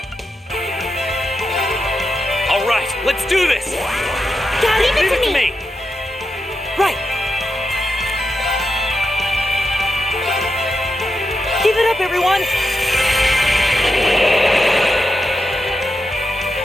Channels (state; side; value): normal; both; correlation 0.86